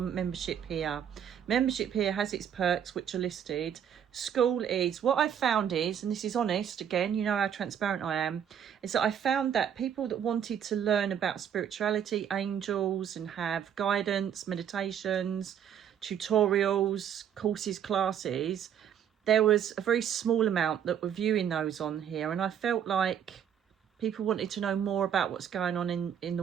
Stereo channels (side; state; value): left; quieter; 8.9 dB